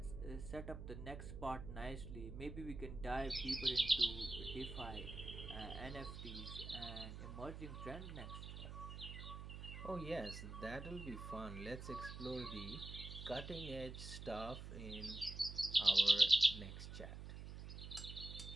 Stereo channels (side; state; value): right; noise; hum, 9 dB below the sound